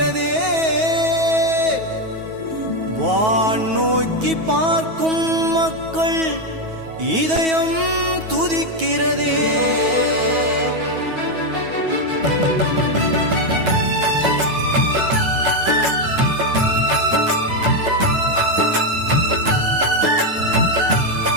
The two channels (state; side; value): late; left; 9.3 ms